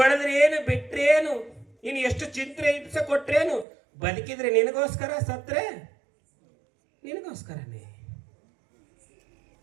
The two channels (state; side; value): drops out; left; at 3.7 s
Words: ಬಿಟ್ರೇನು, ನೀನು ಎಷ್ಟು ಚಿಂತೆ ಹಿಂಸೆ ಕೊಟ್ರೇನು, ಬದುಕಿದ್ರೆ ನಿನಗೋಸ್ಕರ, ಸತ್ರೆ ನಿನಗೋಸ್ಕರನೇ.